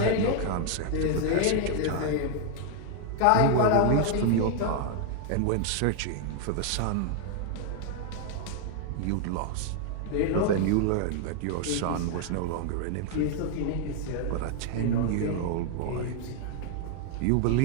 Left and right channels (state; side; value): different; both; correlation 0.00